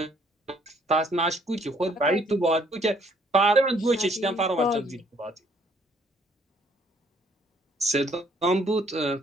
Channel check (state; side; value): normal; both; correlation 0.63